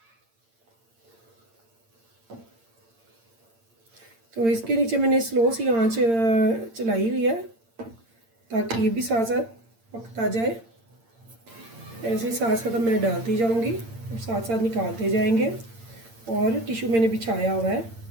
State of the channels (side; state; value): left; late; 8.8 ms